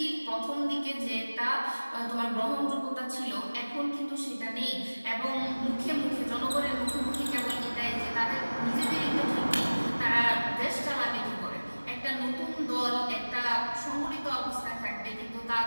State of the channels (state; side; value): inverted; both; correlation -1.00